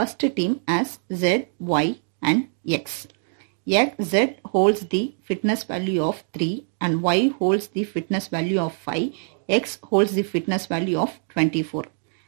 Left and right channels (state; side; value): silent; left; 62 dB below the other